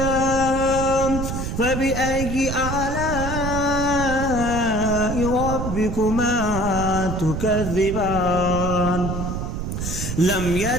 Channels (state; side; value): noise; right; rumble, 4 dB below the sound